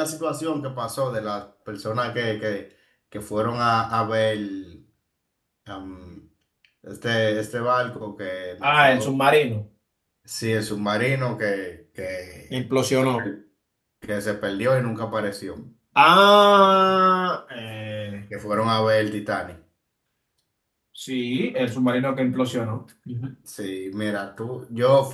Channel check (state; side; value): identical; both; correlation 1.00